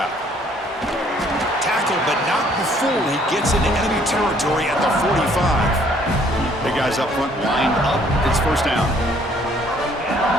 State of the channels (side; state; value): both; normal; correlation 0.62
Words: Tackle, but not before he gets into enemy territory at the 45. The guys up front lined up. It's 1st down.